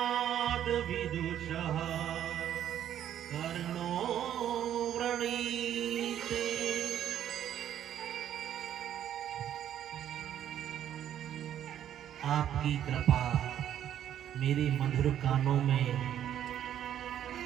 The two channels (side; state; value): left; quieter; 10.6 dB